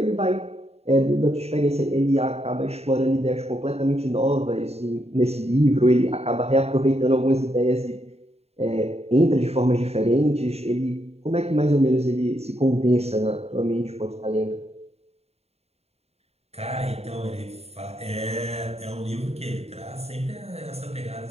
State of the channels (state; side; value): late; left; 0.30 ms